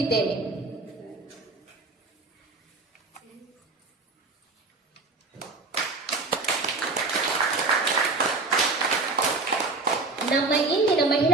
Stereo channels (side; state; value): left; quieter; 3.6 dB